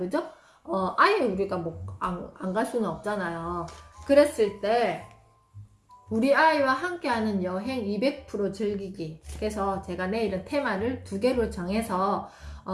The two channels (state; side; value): identical; both; correlation 1.00